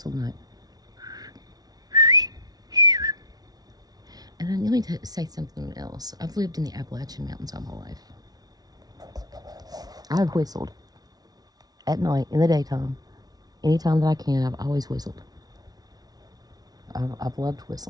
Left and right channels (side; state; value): left; late; 0.19 ms